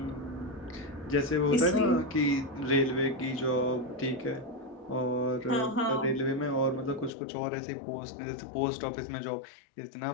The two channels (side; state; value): right; drops out; at 7.1 s